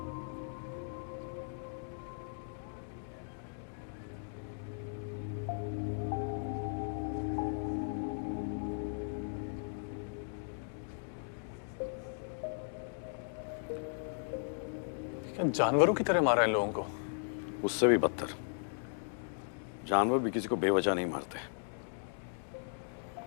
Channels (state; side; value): silent; right; digital silence